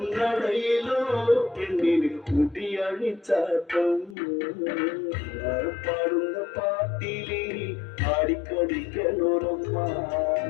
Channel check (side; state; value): right; drops out; at 4.2 s